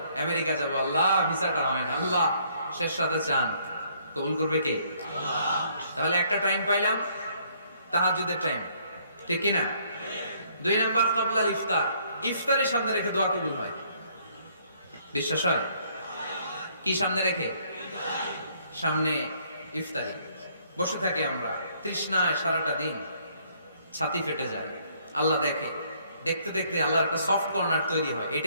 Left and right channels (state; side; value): inverted; both; correlation -0.66